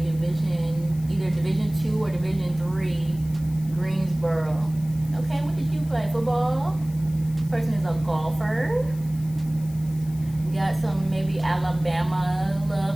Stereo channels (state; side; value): noise; left; hiss, 22 dB below the sound